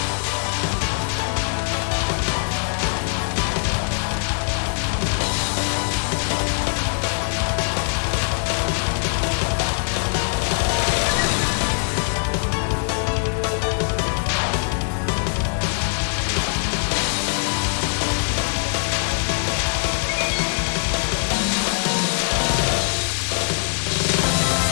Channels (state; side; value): silent; right; 63 dB below the other